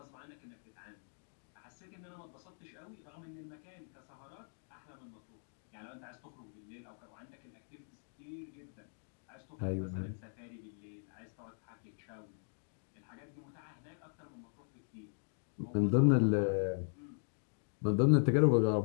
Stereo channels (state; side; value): silent; right; digital silence